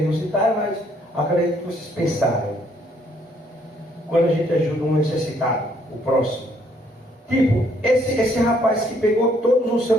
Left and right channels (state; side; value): normal; both; correlation 0.67